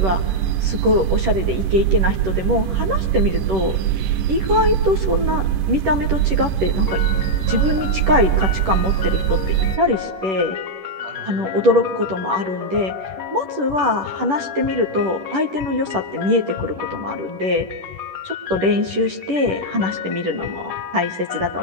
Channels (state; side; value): late; left; 10 ms